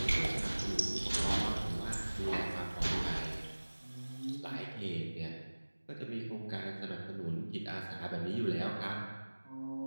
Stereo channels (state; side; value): inverted; both; correlation -1.00